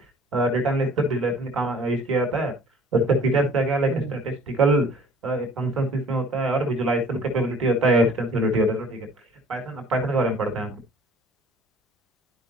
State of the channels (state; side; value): normal; both; correlation 0.51